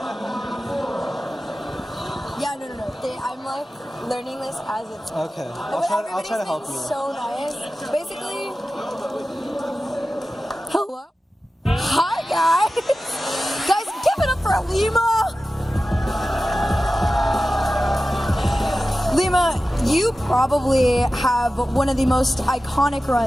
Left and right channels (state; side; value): normal; both; correlation 0.94